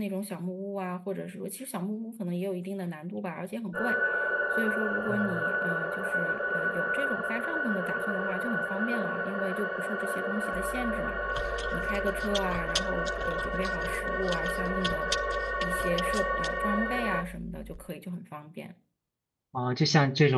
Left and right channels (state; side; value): identical; both; correlation 1.00